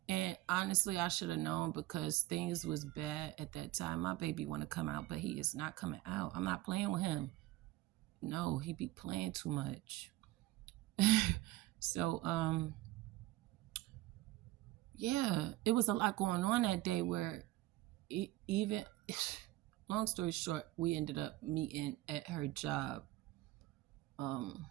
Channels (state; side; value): quieter; left; 17.7 dB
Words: And honestly, I should have known because things was bad at that time. My baby want to come out, but he is not coming out. I'm not playing with him. No, he be playing too much. So, yeah, it was a lot going on that day where even, long story short, we ended up meeting at her job. 5